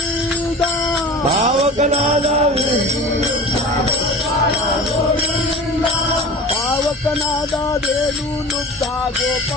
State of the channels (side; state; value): both; normal; correlation 0.36